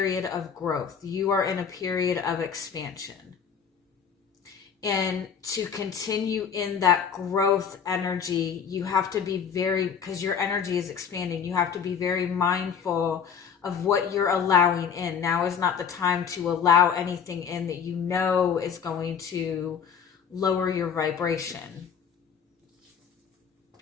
of growth. You are in a period of expansion. And to continue in that growth energy, you have to be very, because your energy is expanding, you have to be very mindful of what you're allowing in. Now is not the time to allow anything in that you know is going to lower your vibration.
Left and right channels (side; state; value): right; quieter; 7.1 dB